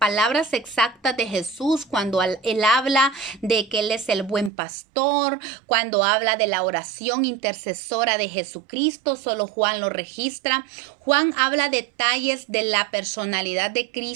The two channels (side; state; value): left; drops out; at 4.5 s